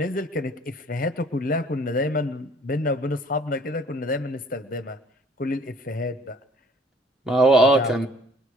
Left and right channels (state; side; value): normal; both; correlation 0.56